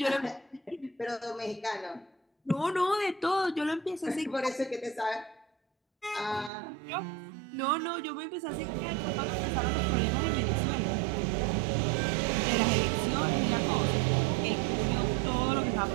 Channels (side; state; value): left; drops out; at 6.5 s